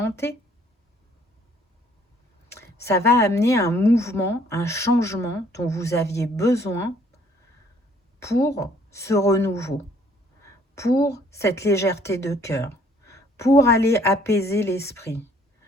Ça va amener un mouvement, un changement dont vous aviez besoin pour ce renouveau, pour cette légèreté de cœur, pour aller apaiser l'esprit,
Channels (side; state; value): both; normal; correlation 0.62